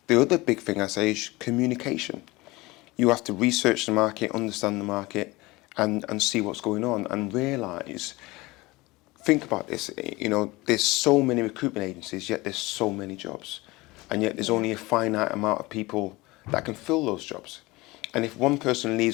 The other big thing I say is communication. You have to research the market, understand the market, and see what's going on, and realise, think about this, there's so many recruitment agencies, yet there's so many jobs. And yet there's only a finite amount of people that can fill those jobs. And if one person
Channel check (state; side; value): quieter; right; 21.8 dB